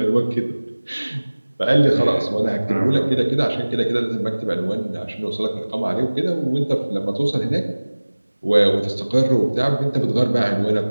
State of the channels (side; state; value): both; inverted; correlation -1.00